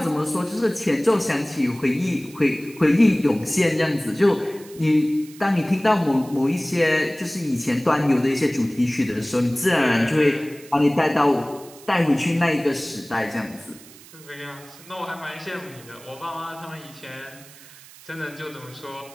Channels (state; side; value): noise; right; hiss, 21 dB below the sound